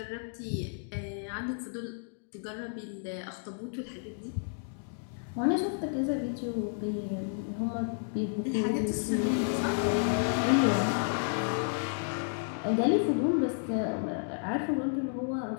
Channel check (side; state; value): right; silent; digital silence